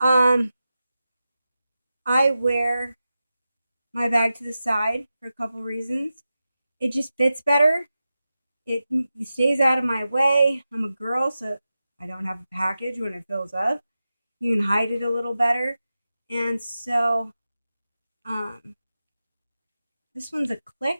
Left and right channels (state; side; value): inverted; both; correlation -0.92